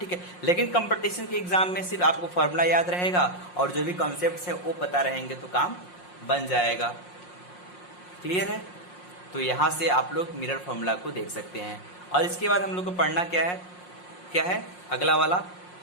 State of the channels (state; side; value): late; right; 5.6 ms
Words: है, लेकिन कंपटीशन के एग्जाम में सिर्फ आपको फॉर्मूला याद रहेगा और जो भी कॉन्सेप्ट्स है वो पता रहेंगे तो काम बन जाएगा। क्लियर है, तो यहाँ से आप लोग मिरर फॉर्मूला को देख सकते हैं। और इसके बाद हम लोग को पढ़ना क्या है अगला वाला,